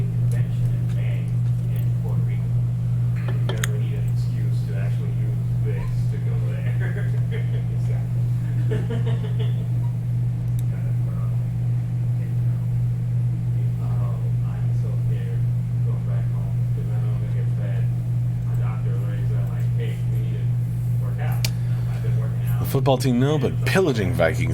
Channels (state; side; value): identical; both; correlation 1.00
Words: The football team, no, but pillaging